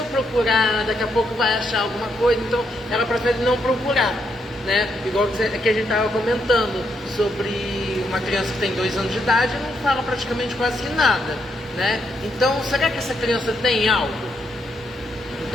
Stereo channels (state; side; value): normal; both; correlation 0.78